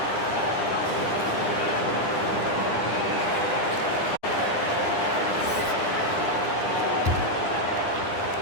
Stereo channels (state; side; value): late; right; 9.9 ms